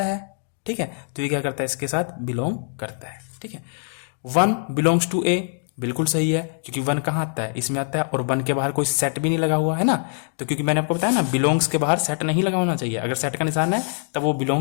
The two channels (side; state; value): right; silent; 63 dB below the other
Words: है, ठीक है। तो ये क्या करता है, इसके साथ बिलोंग करता है, ठीक है। 1 बिलोंग्स टू ए, बिल्कुल सही है, क्योंकि 1 कहां आता है, इसमें आता है, और 1 के बाहर कोई सेट भी नहीं लगा हुआ है ना। तो क्योंकि मैंने आपको बताया ना, बिलोंग्स के बाहर सेट नहीं लगा होना चाहिए। अगर सेट का निशान है तब वो